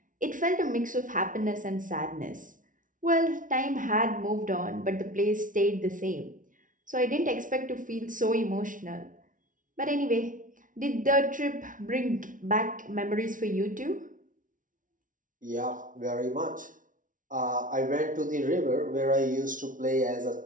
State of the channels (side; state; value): left; late; 0.38 ms